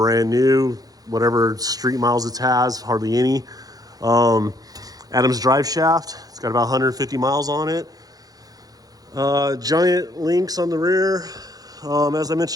new, whatever street miles it has, hardly any. Adams drive shaft. It's got about 150 miles on it. Giant links on the rear. As I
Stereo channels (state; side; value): late; left; 0.18 ms